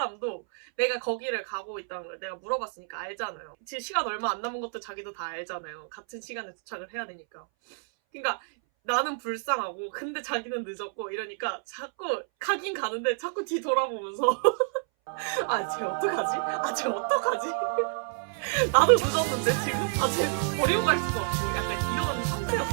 내가 거기를 가고 있다는 걸 내가 물어봤으니까 알잖아요. 지금 시간 얼마 안 남은 것도 자기도 다 알잖아요. 같은 시간에 도착을 해야 되니까. 그러니까 나는 불쌍하고 근데 자기는 늦었고 이러니까 자꾸 가긴 가는데 자꾸 뒤 돌아보면서 쟤 어떡하지? 쟤 어떡하지? 나도 늦었는데 지금? 쟤 버리고 갈 수도 없고 약간 이런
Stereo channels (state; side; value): silent; left; 59 dB below the other